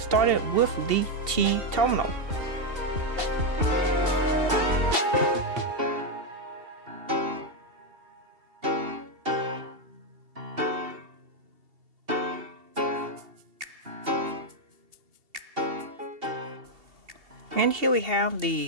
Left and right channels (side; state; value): left; late; 2.7 ms